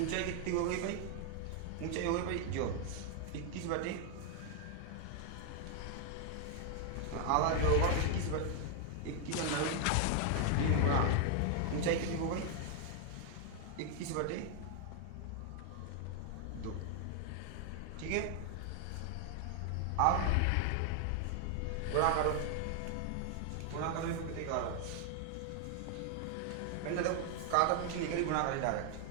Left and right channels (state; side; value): different; both; correlation 0.00